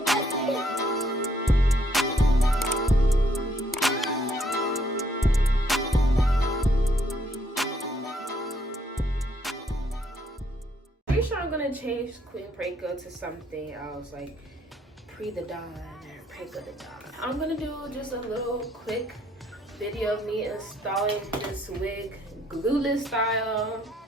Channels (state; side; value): normal; both; correlation 0.69